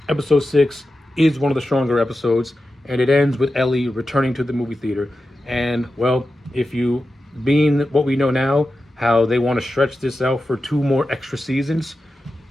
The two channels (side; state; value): both; normal; correlation 0.92